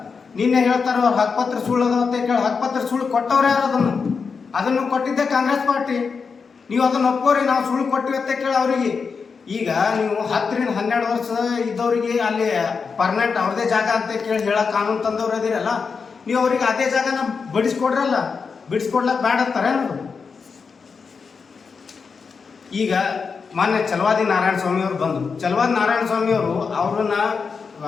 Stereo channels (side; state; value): right; quieter; 5.3 dB